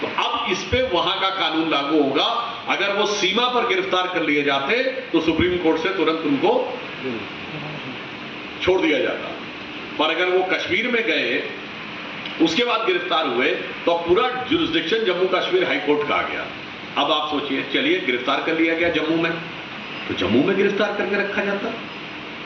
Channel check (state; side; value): identical; both; correlation 1.00